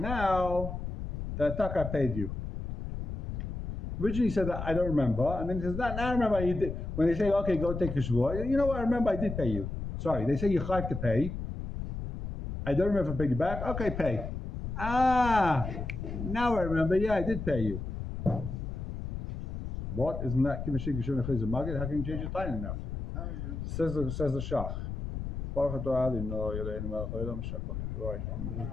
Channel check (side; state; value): left; noise; rumble, 5 dB below the sound